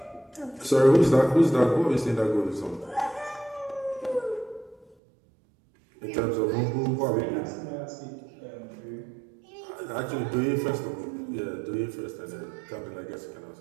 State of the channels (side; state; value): left; drops out; at 5.0 s